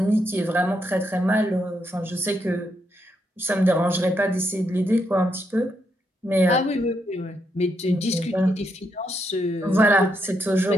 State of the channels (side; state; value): both; normal; correlation 0.79